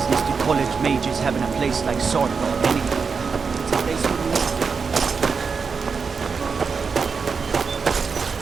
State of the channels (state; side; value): quieter; left; 5.4 dB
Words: do college majors have in a place like Swordfall anyway? It's a place for